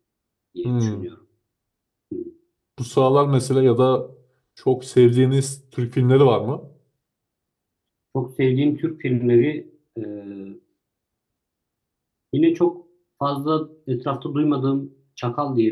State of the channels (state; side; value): identical; both; correlation 1.00